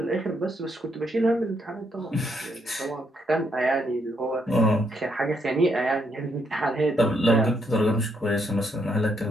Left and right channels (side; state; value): both; normal; correlation 0.75